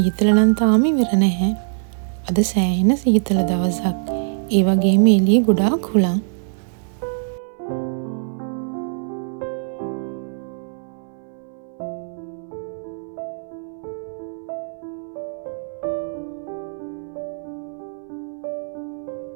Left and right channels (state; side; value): silent; left; 60 dB below the other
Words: නම් තාම ඉවර නැහැ. අද සෑහෙන සීතල දවසක්. ඒ වගේම එළියේ ගොඩාක් හුළං.